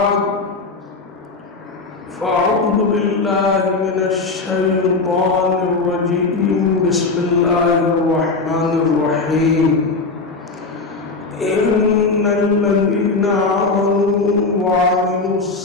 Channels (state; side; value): quieter; right; 3.8 dB